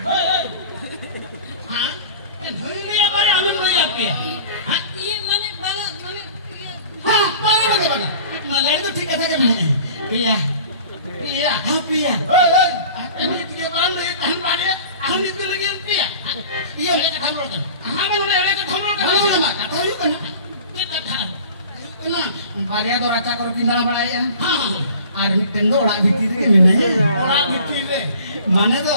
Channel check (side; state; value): both; inverted; correlation -0.43